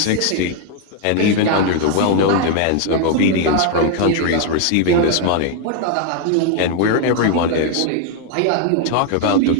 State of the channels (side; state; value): both; different; correlation 0.00